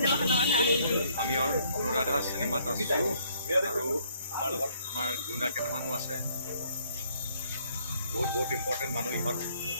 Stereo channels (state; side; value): inverted; both; correlation -0.65